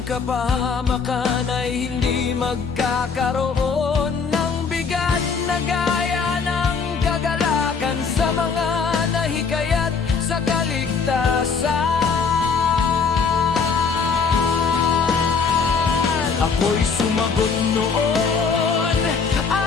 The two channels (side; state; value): right; quieter; 5.4 dB